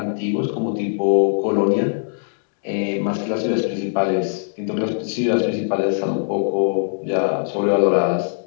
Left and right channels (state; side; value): silent; right; digital silence